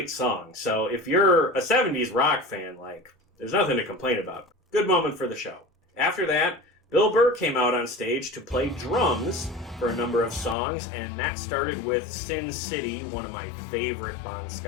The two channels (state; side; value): drops out; right; at 10.6 s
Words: song. So if you're a 70s rock fan, there's nothing to complain about. Good moment for the show. After that, Bill Burr came out on stage to play drums for a number of songs, and that started with Sin City, one of my favorite Bon